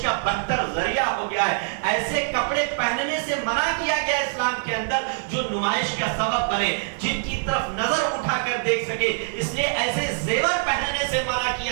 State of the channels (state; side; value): silent; left; 62 dB below the other